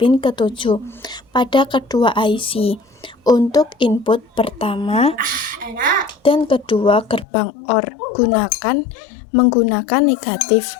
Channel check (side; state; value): right; drops out; at 7.2 s